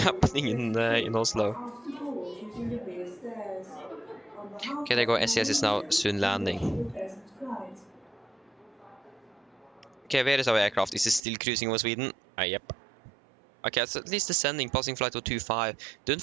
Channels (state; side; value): drops out; left; at 11.2 s